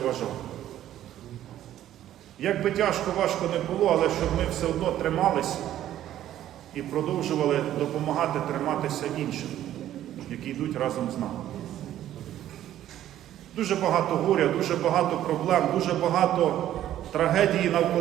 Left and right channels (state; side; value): quieter; left; 12.3 dB